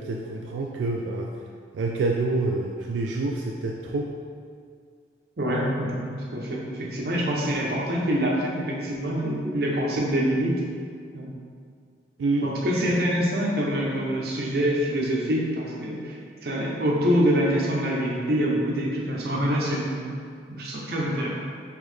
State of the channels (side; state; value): both; normal; correlation 0.57